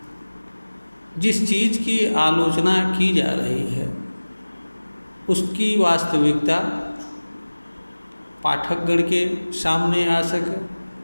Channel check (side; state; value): both; inverted; correlation -1.00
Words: जिस चीज़ की आलोचना की जा रही है उसकी वास्तविकता पाठकगण के सामने आ सके।